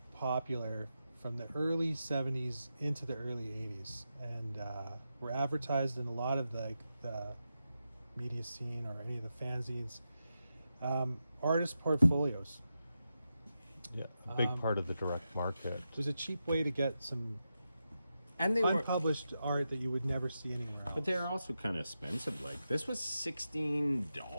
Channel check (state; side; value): inverted; both; correlation -0.89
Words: popular from the early 70s into the early 80s, and were advertised in a lot of the media scene or any of the fanzines. Artist portfolios. Yeah, a big part of the direct market. It was a cheap way to get some And they were, unpublished art that you would never see anywhere else. but they're also kind of expensive. Like this was